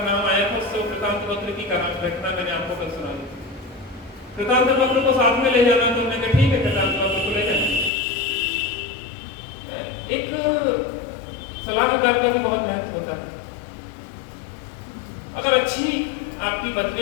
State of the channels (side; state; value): right; drops out; at 7.9 s